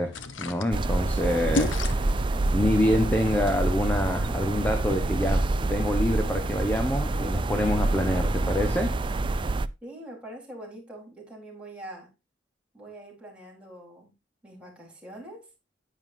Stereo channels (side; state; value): both; normal; correlation 0.82